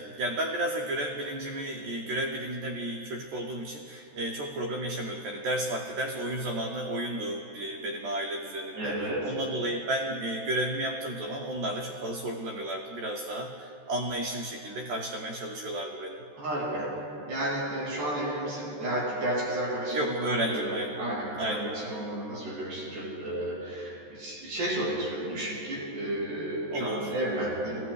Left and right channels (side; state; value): left; late; 14 ms